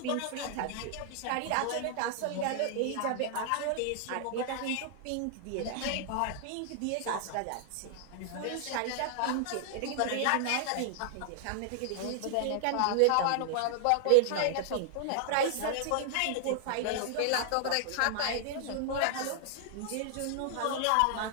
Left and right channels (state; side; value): different; both; correlation 0.00